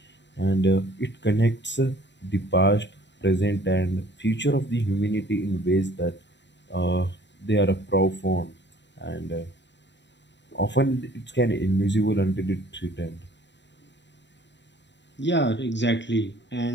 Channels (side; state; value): right; late; 0.52 ms